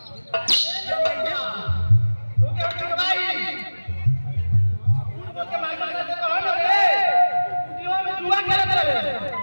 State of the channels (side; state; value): both; inverted; correlation -1.00